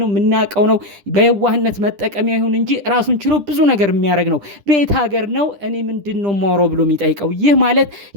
የምናውቀው ነው። በየዋህነት መጠቀሚያ ይሁን እንጂ ራሱን ችሎ ብዙ ነገር የሚያደርግ ነው። ቤት ሀገር ነው። እኔ ምንድነው ማውራው ብሎ የሚጠይቀው። ይህ ማለት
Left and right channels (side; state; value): left; late; 10 ms